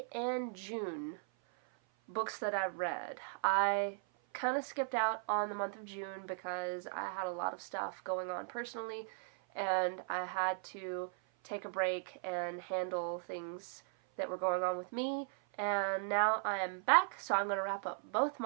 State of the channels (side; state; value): left; silent; 53 dB below the other